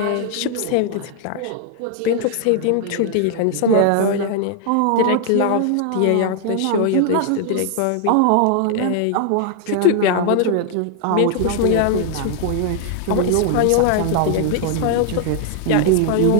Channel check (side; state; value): both; different; correlation 0.00